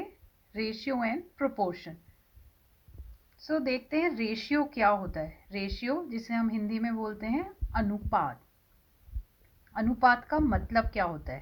रेशियो एंड प्रोपोर्शन। देखते हैं रेशियो क्या होता है। रेशियो जिसे हम हिंदी में बोलते हैं अनुपात। अनुपात का मतलब क्या होता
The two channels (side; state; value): both; identical; correlation 1.00